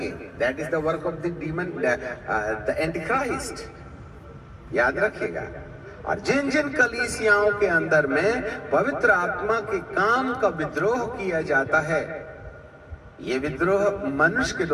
That is the work of the demon, the Antichrist. याद रखिएगा। और जिन जिन कलीसियाओं के अंदर में पवित्र आत्मा के काम का विद्रोह किया जाता है, ये विद्रोह मनुष्य के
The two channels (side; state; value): both; identical; correlation 1.00